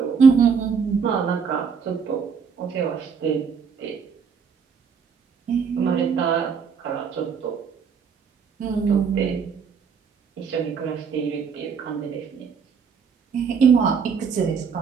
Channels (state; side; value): quieter; left; 6.2 dB